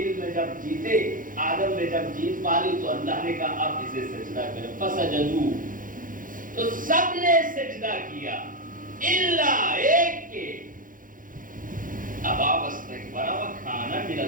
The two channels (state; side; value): late; left; 0.39 ms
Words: میں جب جیتے، آدم نے جب جیت پالی تو اللہ نے کہا اب اسے سجدہ کریں، فسجدوا، تو سب نے سجدہ کیا الا ایک کے، ابا واستکبر وکان من